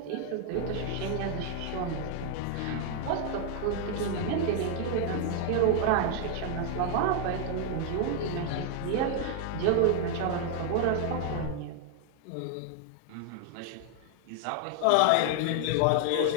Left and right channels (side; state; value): both; different; correlation 0.00